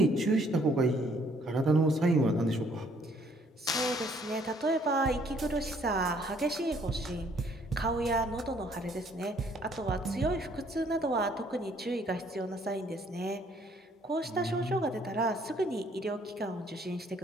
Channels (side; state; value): both; normal; correlation 0.63